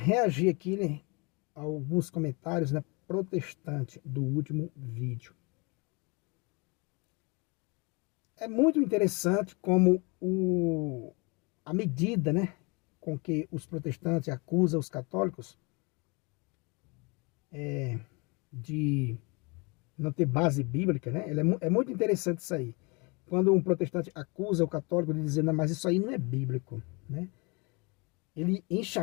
aqui, né, a alguns comentários, né, protestantes do último vídeo. É muito interessante como a medida, né, com que os protestantes acusam os católicos de não ter base bíblica, né? É muito interessante isso aí. Quando um protestante acusa o católico de dizer, não, mas isso aí não é bíblico, né? Ele enche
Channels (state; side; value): quieter; right; 29.4 dB